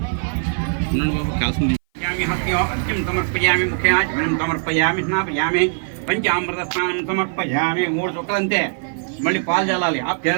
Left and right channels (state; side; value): silent; left; 59 dB below the other